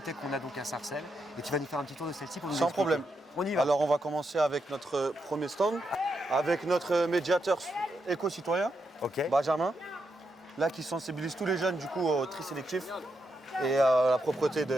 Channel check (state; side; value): normal; both; correlation 0.83